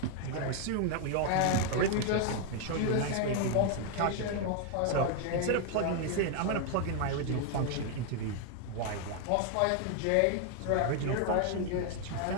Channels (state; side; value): different; both; correlation 0.01